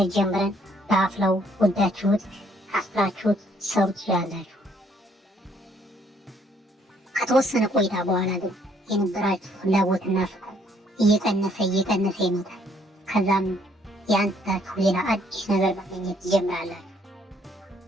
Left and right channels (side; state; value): both; normal; correlation 0.66